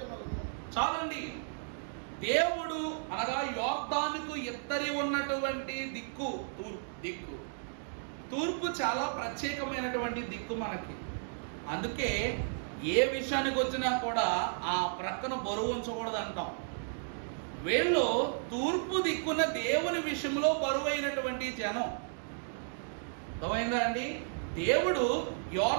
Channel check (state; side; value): silent; left; digital silence